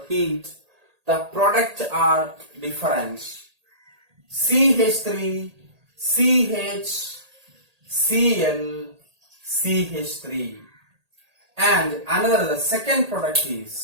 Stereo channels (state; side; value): late; left; 1.8 ms